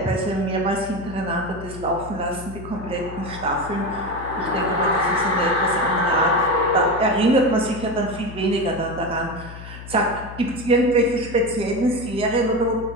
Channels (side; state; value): left; noise; hum, 13 dB below the sound